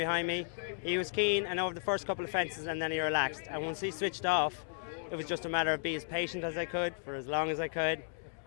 me. He was keen, and over the first couple of fences, and then he relaxed. And once he switched off, it was just a matter of being as patient as I could for as long as I could,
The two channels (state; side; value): silent; right; digital silence